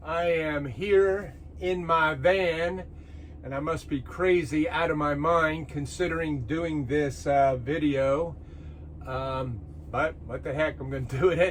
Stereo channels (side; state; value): both; identical; correlation 1.00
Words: I am here in my van and I must be crazy out of my mind considering doing this video. But what the heck, I'm going to do it